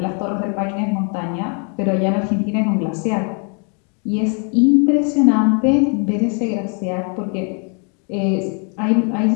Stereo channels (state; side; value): quieter; right; 38.5 dB